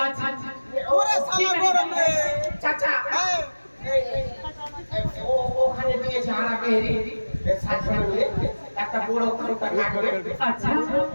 আচ্ছা আচ্ছা ওরে সালা গরম রে চাচা ওখানে দিয়েছে হারা বেহরি সাজনে একটা বড় খাতা কাটবে আচ্ছা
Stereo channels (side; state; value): both; inverted; correlation -1.00